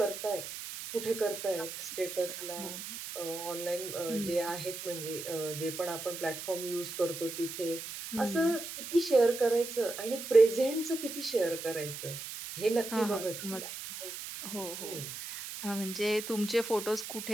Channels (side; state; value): right; noise; hiss, 8 dB below the sound